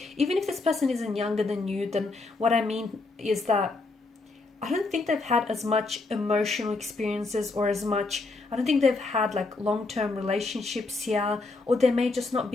even if this person isn't younger than you, then what I mean is that I don't think they've had as much emotional experiences or as much, I don't think they've had like long-term relationships here, or they may just not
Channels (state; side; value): quieter; right; 3.5 dB